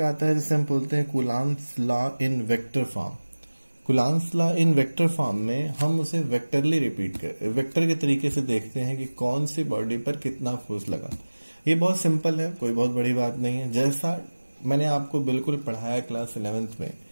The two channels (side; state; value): both; inverted; correlation -1.00